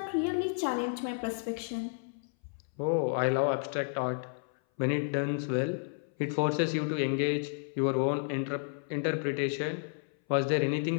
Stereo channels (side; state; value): right; silent; 57 dB below the other